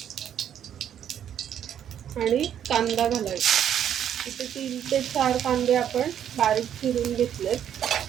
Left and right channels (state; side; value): quieter; left; 9.7 dB